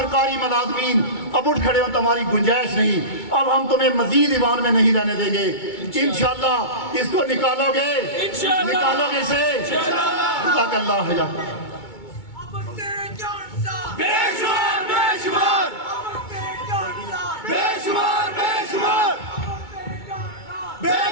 ملازمین اب اٹھ کھڑے ہوں تمہاری گنجائش نہیں اب ہم تمہیں مزید ایوان میں نہیں رہنے دیں گے انشاءاللہ اس کو نکالو گے نکالو گے اسے جزاک اللہ خیر بے شمار بے شمار بے شمار بے شمار بے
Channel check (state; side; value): late; right; 2.2 ms